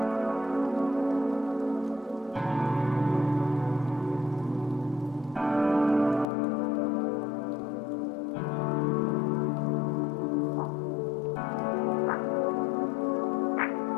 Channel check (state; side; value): drops out; right; at 6.2 s